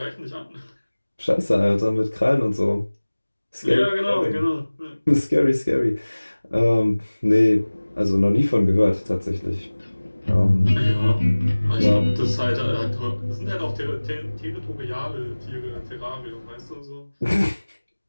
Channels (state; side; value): inverted; both; correlation -1.00